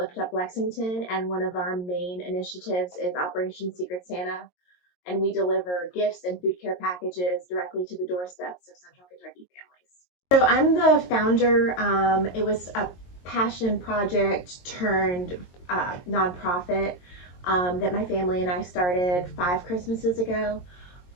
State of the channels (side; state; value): right; late; 22 ms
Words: Up Lexington, and one of our main initiatives is Operation Secret Santa, and we deliver gifts and food care packages directly to the doorsteps of Central Kentucky families. So I'm the founder. It was a passion project turned nonprofit that my family and I started 5 Christmases ago.